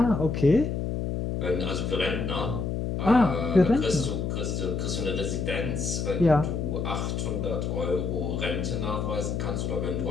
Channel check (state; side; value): noise; left; hum, 2 dB below the sound